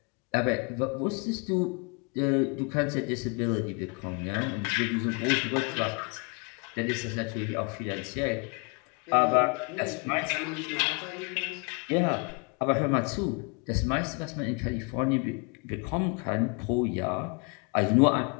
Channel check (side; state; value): right; quieter; 33.0 dB